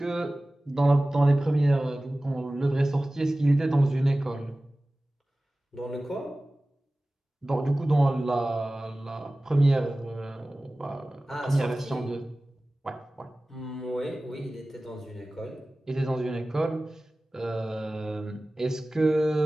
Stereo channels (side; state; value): both; normal; correlation 0.97